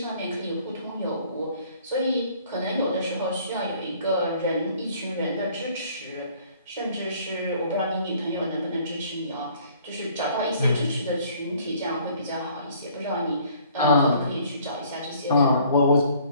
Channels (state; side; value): inverted; both; correlation -0.57